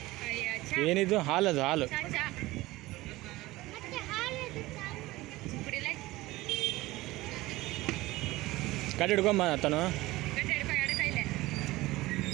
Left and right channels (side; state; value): left; quieter; 19.0 dB